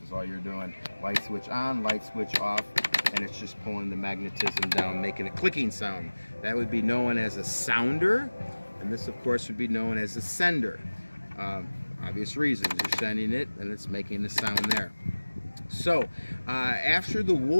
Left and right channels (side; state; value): both; inverted; correlation -1.00